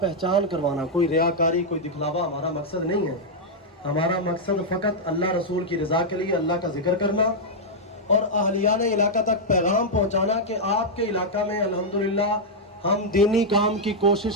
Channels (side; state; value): both; normal; correlation -0.04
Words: پہچان کروانا، کوئی ریاکاری کوئی دکھلاوا ہمارا مقصد نہیں ہے۔ ہمارا مقصد فقط اللہ رسول کی رضا کے لیے اللہ کا ذکر کرنا اور اہلیان علاقہ تک پیغام پہنچانا کہ آپ کے علاقہ میں الحمدللہ ہم دینی کام کی